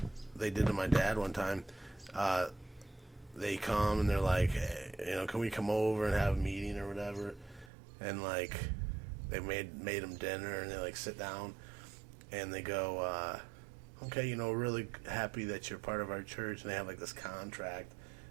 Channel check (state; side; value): drops out; left; at 7.7 s